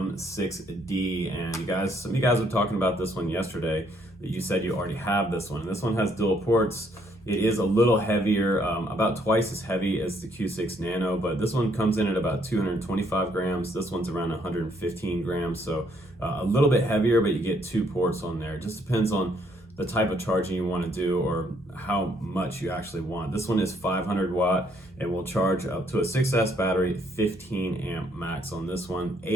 and some of you guys were talking about this one yesterday, that you said you already have this one. And this one has dual ports. It is a little heavier, about twice as heavy as the Q6 Nano, but this one comes in at about 225 grams. This one's around 115 grams, so a little bit heavier, but you get 2 ports on there. It just depends on the type of charging you want to do or how much you actually want. This one is 500 watt and will charge up to a 6S battery, 15 amp max on this one,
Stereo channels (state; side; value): normal; both; correlation 0.69